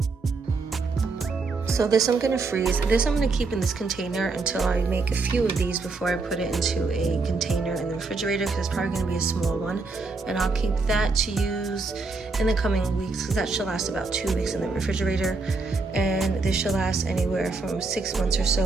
So this I'm gonna freeze. This I'm gonna keep in this container until I make a few of these before I put it into a container in the refrigerator, because it's probably gonna be a small one. And I'll keep that to use in the coming weeks, because that should last about 2 weeks in the refrigerator. And this should last anywhere from 6 months or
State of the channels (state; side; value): quieter; left; 3.9 dB